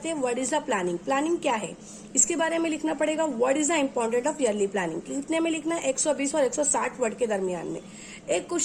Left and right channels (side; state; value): both; identical; correlation 1.00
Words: हैं। What is the planning? Planning क्या है इसके बारे में लिखना पड़ेगा। What is the important of yearly planning? कितने में लिखना है? 120 और 160 वर्ड के दरमियान में। एक